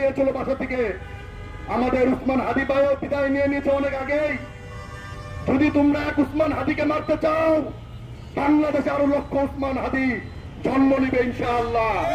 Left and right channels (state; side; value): identical; both; correlation 1.00